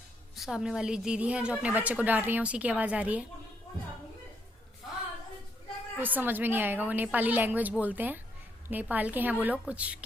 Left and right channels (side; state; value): both; normal; correlation 0.75